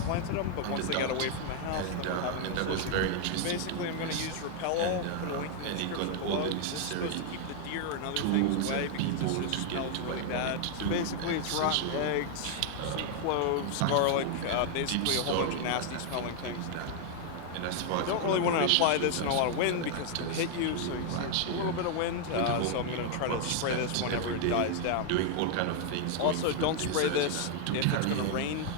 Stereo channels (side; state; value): both; different; correlation 0.00